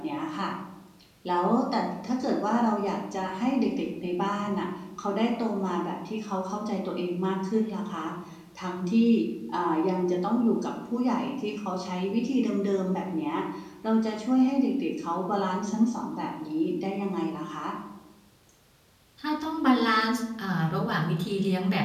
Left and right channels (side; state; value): both; identical; correlation 1.00